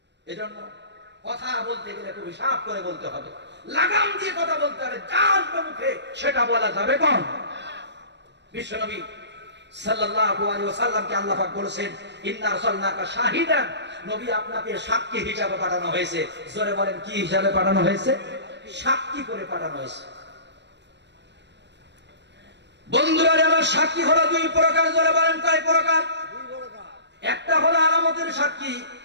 এজন্য কথা বলতে গেলে খুব হিসাব করে বলতে হবে, লাগাম দিয়ে কথা বলতে হবে। যার মুখে সেটা বলা যাবে কোন? বিশ্বনবী সাল্লাল্লাহু আলাইহি ওয়াসাল্লামকে আল্লাহ পাক বলেছেন, ইন্না আরসালনাকা শাহিদান নবী আপনাকে সাক্ষী হিসাবে পাঠানো হয়েছে। জোরে বলেন কি হিসাবে পাঠানো হয়েছে? সাক্ষী করে পাঠানো হয়েছে। বন্ধুরা আমার সাক্ষী হলো দুই প্রকার। জোরে বলেন কয় প্রকার? একটা হলো আলামতের সাক্ষী,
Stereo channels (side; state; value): left; late; 0.51 ms